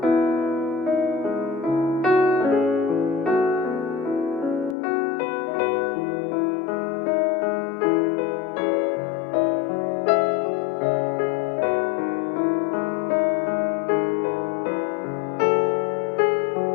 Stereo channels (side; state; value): right; drops out; at 4.8 s